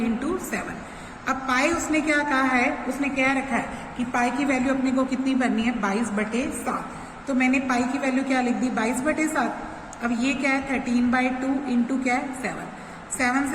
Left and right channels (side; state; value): both; identical; correlation 1.00